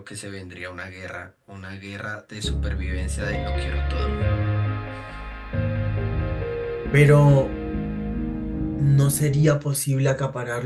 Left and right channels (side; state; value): both; identical; correlation 1.00